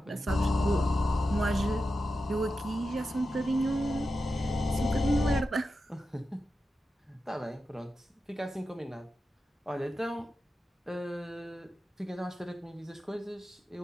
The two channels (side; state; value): both; normal; correlation 0.91